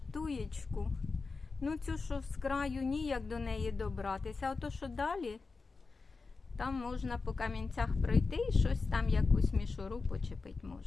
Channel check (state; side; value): quieter; right; 4.2 dB